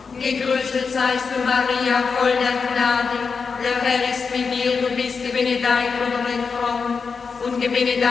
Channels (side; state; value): right; quieter; 5.3 dB